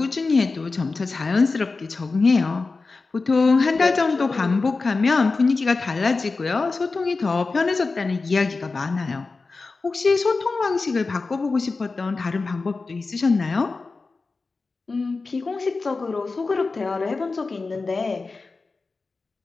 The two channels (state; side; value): quieter; right; 3.9 dB